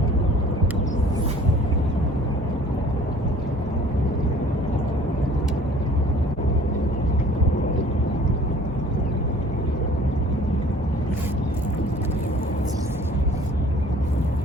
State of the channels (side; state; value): both; normal; correlation 0.51